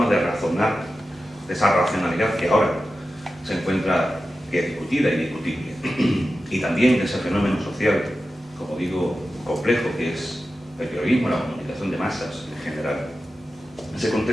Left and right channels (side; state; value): both; normal; correlation 0.93